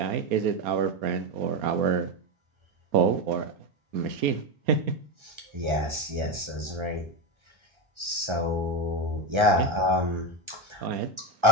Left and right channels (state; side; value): late; left; 1.3 ms